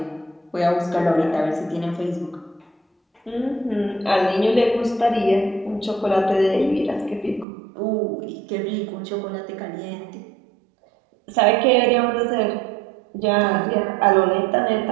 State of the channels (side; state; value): left; drops out; at 7.5 s